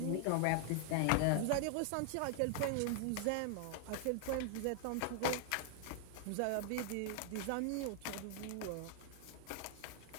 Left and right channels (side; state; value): both; different; correlation 0.00